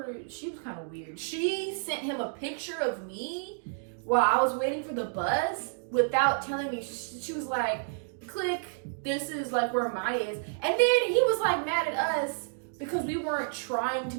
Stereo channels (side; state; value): left; silent; digital silence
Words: She was kind of weird. She sent him a picture of me while I was waiting for the bus without telling me. She was like, click, this is like where Maya is. And then he was like mad at us because we weren't trying to